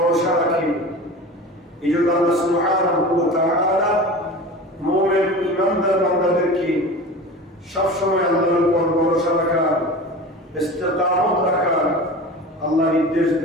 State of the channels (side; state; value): both; normal; correlation 0.34